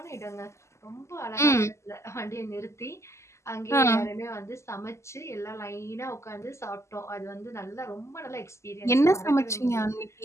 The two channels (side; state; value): right; late; 0.13 ms